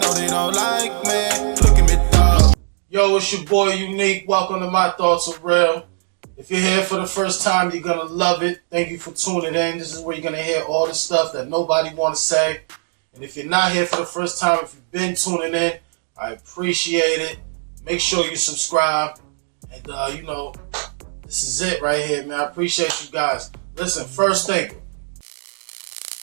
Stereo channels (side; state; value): left; silent; digital silence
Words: they don't like me. Look at me, dog. Yo, it's your boy Unique. Welcome to My Thoughts Are Real. If you're here for the first time, you're gonna love it. Thank you for tuning in. This is where you're gonna hear all the stuff that nobody wanna say. And if you're not here for the first time, if you've been tuning in, I appreciate it. Make sure you subscribe. And this is it right here, man. I appreciate you guys. Listen, first thing.